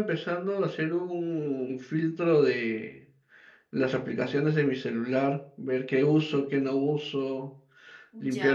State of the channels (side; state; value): both; identical; correlation 1.00